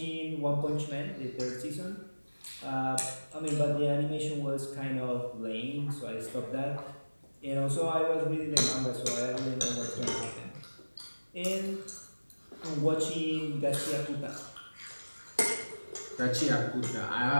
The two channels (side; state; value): both; inverted; correlation -1.00